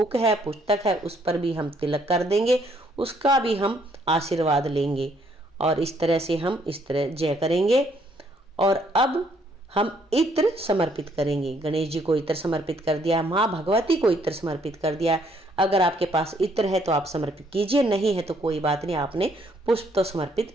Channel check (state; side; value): normal; both; correlation 0.68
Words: है, पुस्तक है, उस पर भी हम तिलक कर देंगे, उसका भी हम आशीर्वाद लेंगे। और इस तरह से हम इस तरह जय करेंगे। और अब हम इत्र समर्पित करेंगे। गणेश जी को इत्र समर्पित कर दिया, माँ भगवती को इत्र समर्पित कर दिया। अगर आपके पास इत्र है तो आप समर्पित कीजिए, नहीं है तो कोई बात नहीं, आपने पुष्प तो